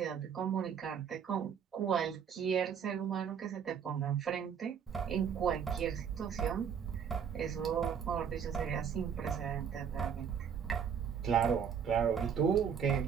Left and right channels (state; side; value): quieter; left; 7.6 dB